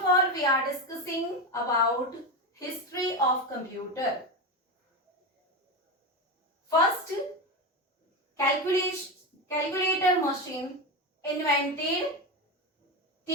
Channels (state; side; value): normal; both; correlation 0.17